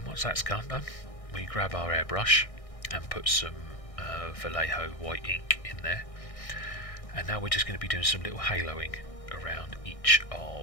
once that's done, we grab our airbrush and put some Vallejo white ink in there, and now we're just going to be doing some little haloing around each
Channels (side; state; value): right; late; 1.6 ms